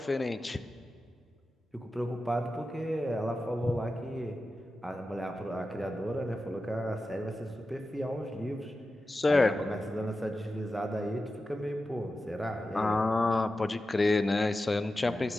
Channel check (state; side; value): normal; both; correlation 0.92